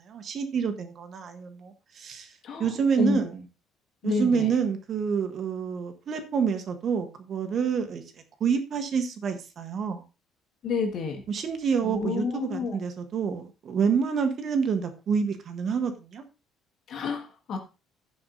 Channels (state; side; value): quieter; left; 4.2 dB